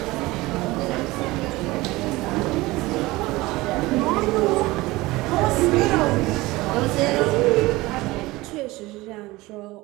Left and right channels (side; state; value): left; quieter; 20.3 dB